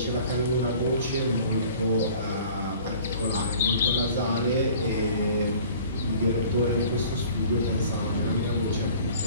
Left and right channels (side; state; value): both; inverted; correlation -0.49